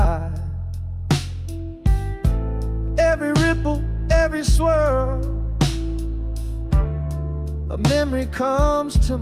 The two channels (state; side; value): identical; both; correlation 1.00